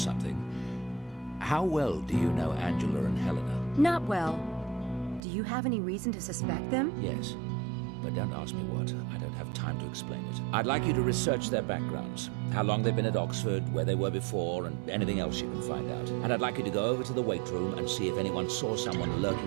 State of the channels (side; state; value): left; drops out; at 5.2 s